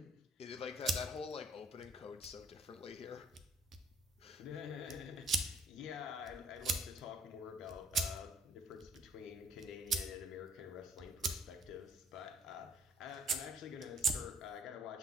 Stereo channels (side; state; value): both; normal; correlation 0.57